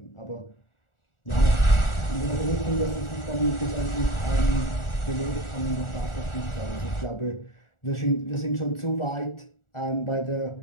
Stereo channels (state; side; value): late; right; 1.4 ms